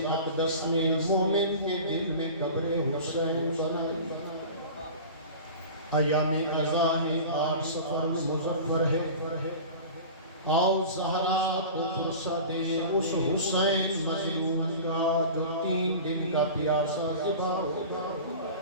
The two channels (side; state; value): both; inverted; correlation -0.36